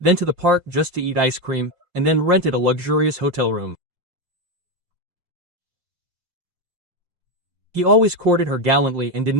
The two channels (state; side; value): late; left; 5.6 ms